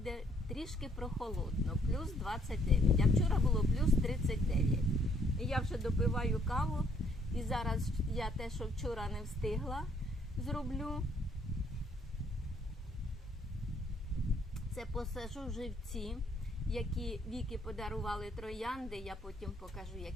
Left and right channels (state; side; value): normal; both; correlation 0.67